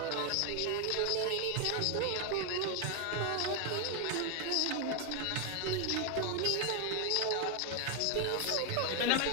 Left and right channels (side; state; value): both; different; correlation 0.01